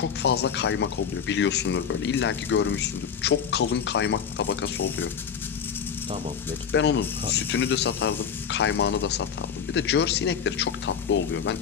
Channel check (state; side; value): quieter; right; 7.3 dB